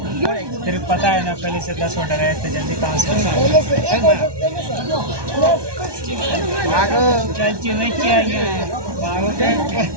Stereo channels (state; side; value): late; left; 1.2 ms